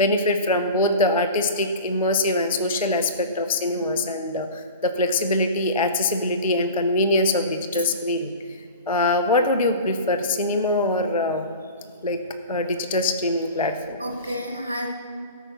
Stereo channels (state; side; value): inverted; both; correlation -0.34